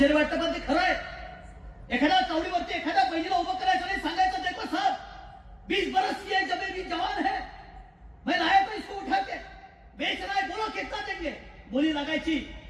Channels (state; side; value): identical; both; correlation 1.00